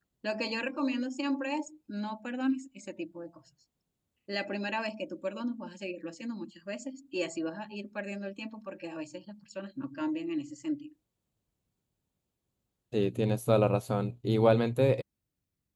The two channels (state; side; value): identical; both; correlation 1.00